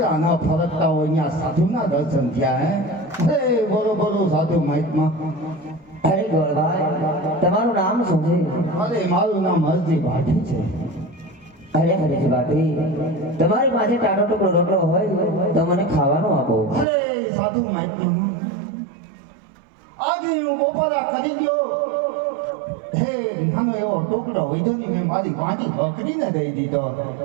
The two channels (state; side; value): drops out; left; at 16.9 s